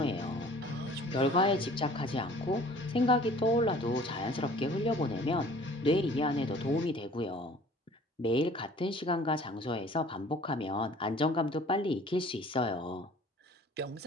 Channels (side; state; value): both; normal; correlation 0.50